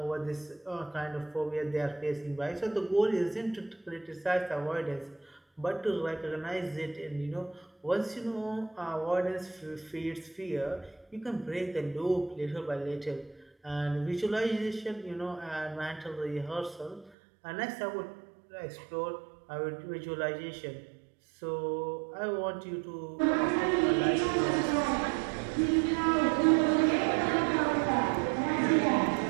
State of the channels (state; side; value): drops out; left; at 17.1 s